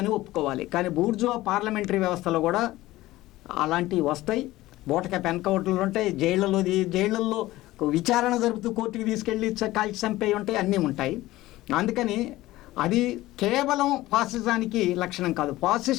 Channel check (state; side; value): quieter; right; 17.2 dB